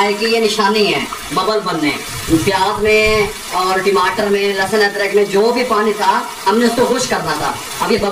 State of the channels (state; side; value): identical; both; correlation 1.00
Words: की ये निशानी है, बबल बनने। प्याज में और टमाटर में, लहसुन अदरक में जो भी पानी था हमने उसको खुश करना था। अब ये